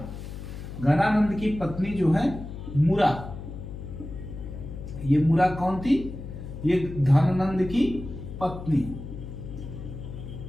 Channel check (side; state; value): left; noise; hum, 10 dB below the sound